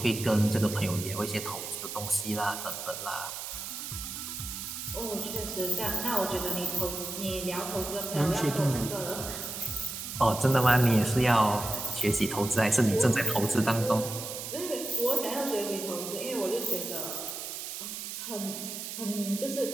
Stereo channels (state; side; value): noise; right; hiss, 7 dB below the sound